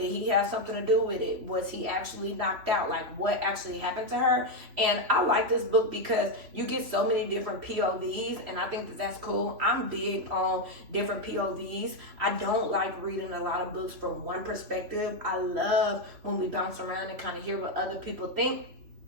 he have something to do with it? Was he actually knocked out? Like, what actually happened to her? And I like this book because you get so many different POVs, and I think that that's cool. I'm big on different POVs. I don't like reading a lot of books from one perspective. I love when we bounce around and kind of hear what other people think.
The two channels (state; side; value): late; left; 3.0 ms